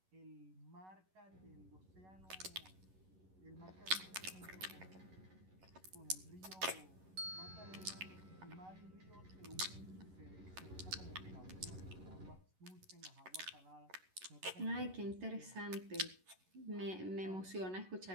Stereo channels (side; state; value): left; late; 11 ms